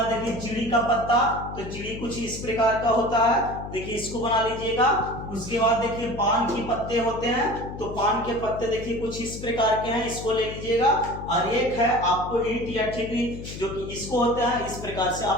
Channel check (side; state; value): left; noise; hum, 10 dB below the sound